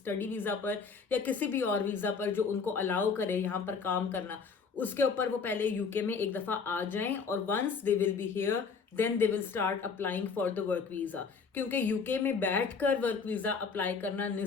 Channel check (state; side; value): quieter; right; 5.3 dB